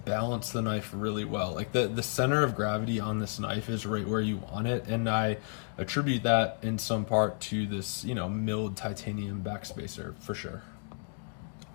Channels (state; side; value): silent; right; digital silence